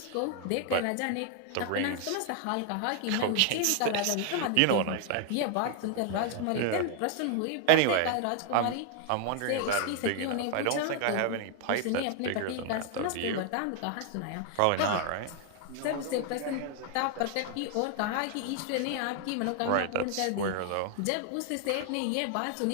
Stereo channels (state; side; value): different; both; correlation 0.00